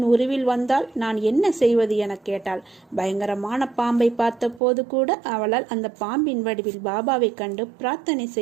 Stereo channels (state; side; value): drops out; left; at 4.6 s